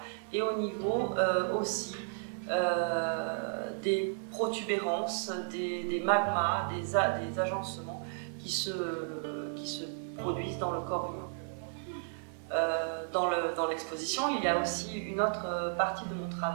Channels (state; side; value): silent; left; digital silence